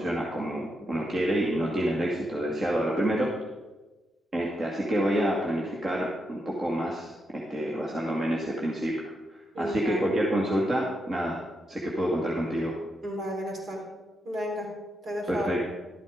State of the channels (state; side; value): normal; both; correlation 0.83